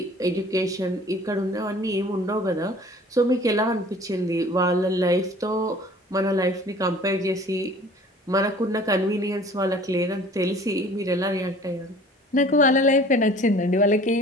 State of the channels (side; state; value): both; normal; correlation 0.48